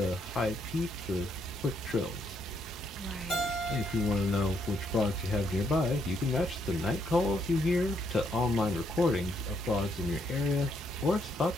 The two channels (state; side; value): normal; both; correlation 0.73